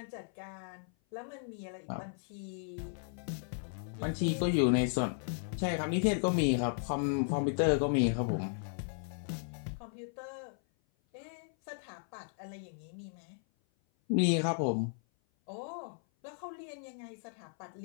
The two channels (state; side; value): silent; right; 54 dB below the other